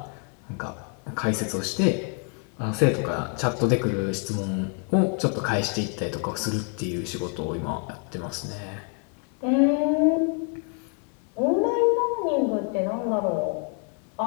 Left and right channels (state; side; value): quieter; right; 38.9 dB